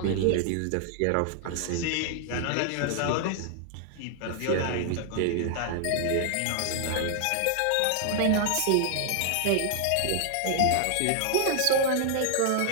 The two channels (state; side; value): different; both; correlation 0.00